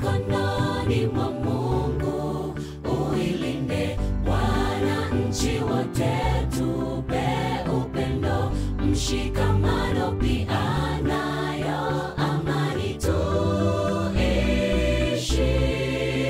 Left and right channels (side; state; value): both; identical; correlation 1.00